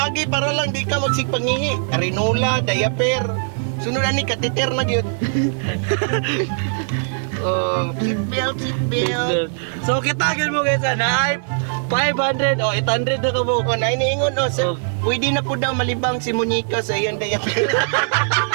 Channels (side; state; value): left; silent; digital silence